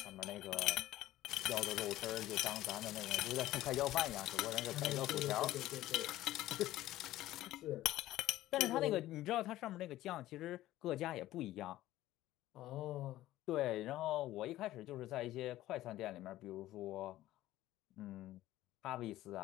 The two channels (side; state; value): right; quieter; 15.2 dB